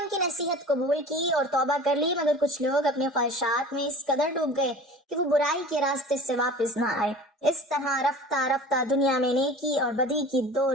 کی نصیحت قبول کی اور توبہ کر لی، مگر کچھ لوگ اپنی خواہشات میں اس قدر ڈوب گئے کہ وہ برائی کے راستے سے واپس نہ آئے۔ اس طرح رفتہ رفتہ دنیا میں نیکی اور بدی کی دو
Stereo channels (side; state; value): both; normal; correlation 0.40